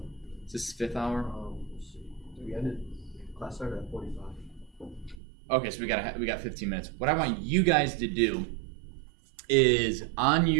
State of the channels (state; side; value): drops out; left; at 5.2 s